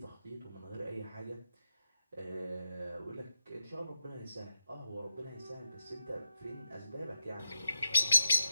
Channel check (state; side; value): inverted; both; correlation -0.89